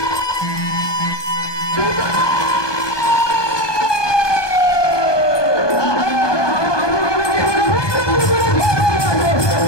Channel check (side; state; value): right; late; 1.2 ms